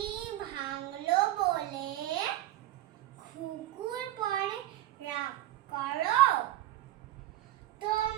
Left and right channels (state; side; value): quieter; left; 15.0 dB